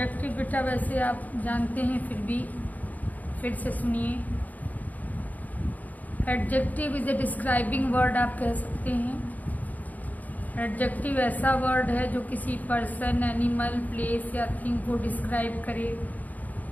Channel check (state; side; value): late; right; 0.079 ms